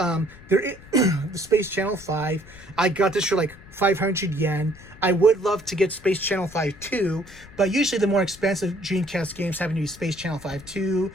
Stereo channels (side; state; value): left; noise; rumble, 20 dB below the sound